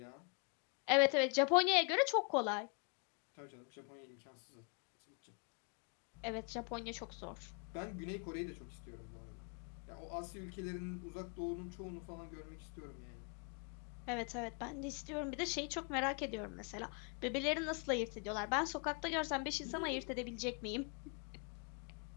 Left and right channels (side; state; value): right; quieter; 36.7 dB